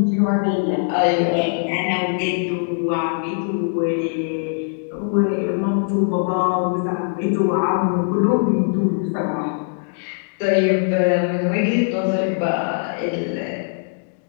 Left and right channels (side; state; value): right; silent; digital silence